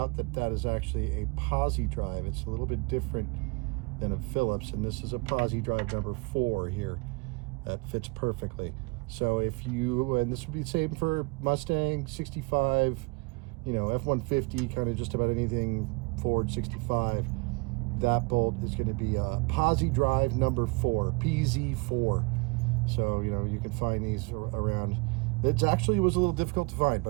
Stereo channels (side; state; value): left; quieter; 28.4 dB